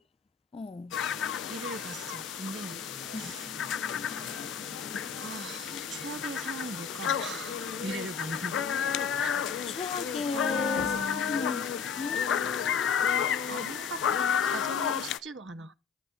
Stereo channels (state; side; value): quieter; right; 6.2 dB